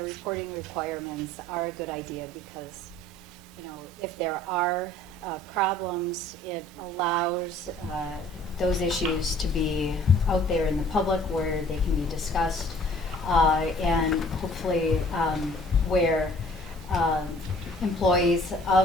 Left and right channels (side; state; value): both; normal; correlation 0.54